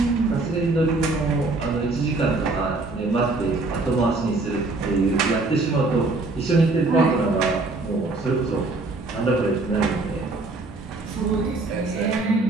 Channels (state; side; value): quieter; left; 3.4 dB